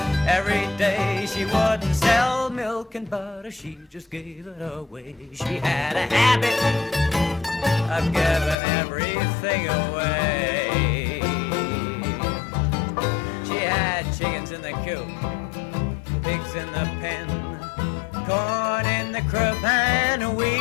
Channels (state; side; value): drops out; right; at 8.6 s